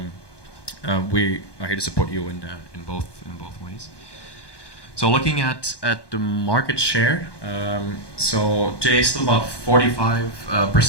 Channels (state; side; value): late; right; 1.2 ms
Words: we are here to support you in both ways. So looking at the market share, so today still about 45%